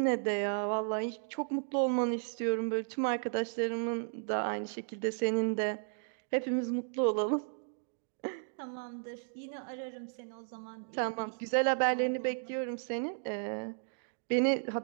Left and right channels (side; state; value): left; silent; digital silence